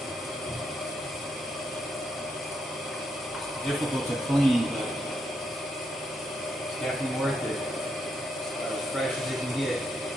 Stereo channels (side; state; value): right; noise; hum, 28 dB below the sound